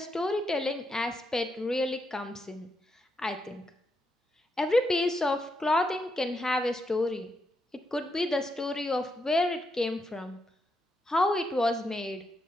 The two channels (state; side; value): normal; both; correlation 0.82